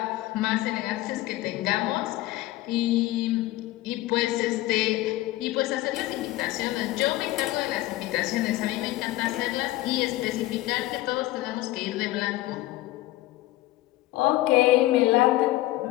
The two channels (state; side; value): quieter; right; 17.0 dB